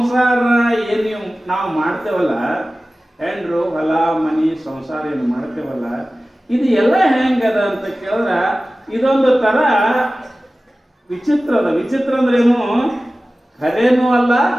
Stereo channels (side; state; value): both; normal; correlation 0.96